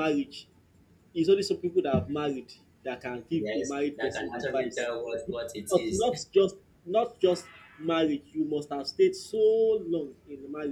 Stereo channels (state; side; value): identical; both; correlation 1.00